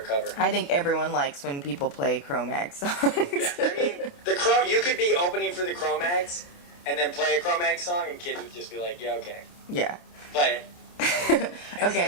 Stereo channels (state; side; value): late; right; 28 ms